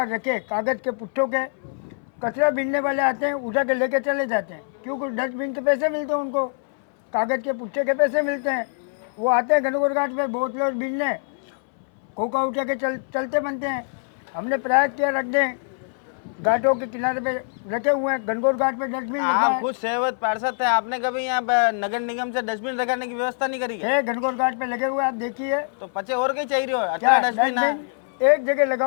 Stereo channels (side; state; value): right; silent; 63 dB below the other